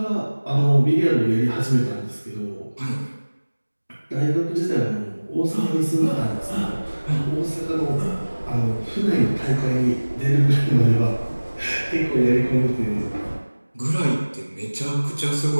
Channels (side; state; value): both; inverted; correlation -1.00